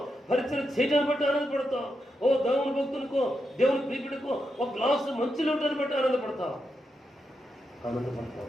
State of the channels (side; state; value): both; normal; correlation 0.85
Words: పరిచయం చేయటాన్ని బట్టి ఆనందపడతాం. దేవుని భక్తునికో దేవుని ప్రీతుడికో ఒక గ్లాసు మంచిలో ఉండటాన్ని బట్టి ఆనందపడతాం.